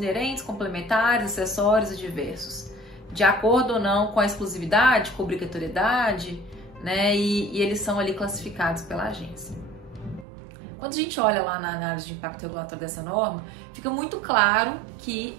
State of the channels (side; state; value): left; drops out; at 10.2 s